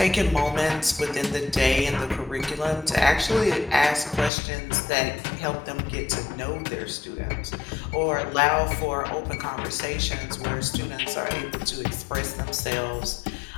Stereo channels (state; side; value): drops out; right; at 4.3 s